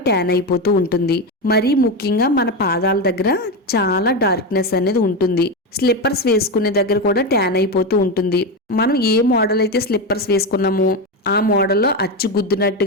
ట్యాన్ అయిపోతూ ఉంటుంది. మరీ ముఖ్యంగా మన పాదాల దగ్గర చాలా డార్క్నెస్ అనేది ఉంటుంది. స్లిప్పర్స్ వేసుకునే దగ్గర కూడా ట్యాన్ అయిపోతూ ఉంటుంది. మనం ఏ మోడల్ అయితే స్లిప్పర్స్ వేసుకున్నామో ఆ మోడల్లో అచ్చు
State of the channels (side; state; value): both; normal; correlation 0.14